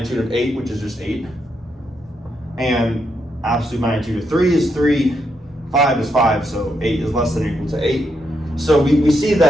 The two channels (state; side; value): normal; both; correlation 0.80